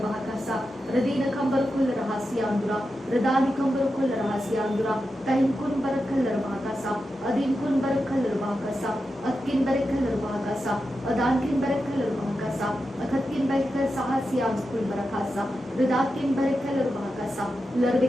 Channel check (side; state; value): both; normal; correlation 0.89